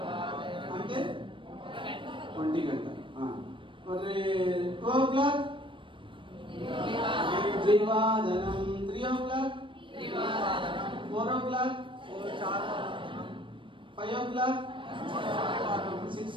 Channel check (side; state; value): left; late; 0.25 ms